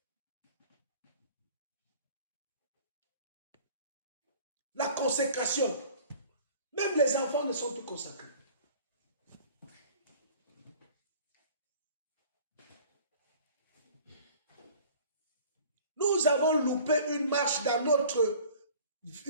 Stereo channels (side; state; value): both; inverted; correlation -0.48